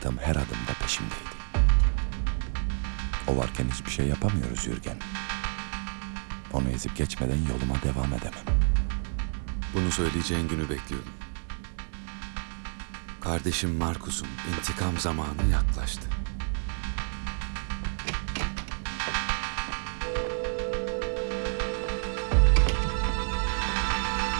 her adımda peşimdeydi. O varken hiçbir şey yapamıyoruz Yürgen. Onu ezip geçmeden yoluma devam edemem. Bunu söyleyeceğin günü bekliyordum. Kardeşim Markus'un intikam zamanı yaklaştı.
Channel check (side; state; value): left; silent; 58 dB below the other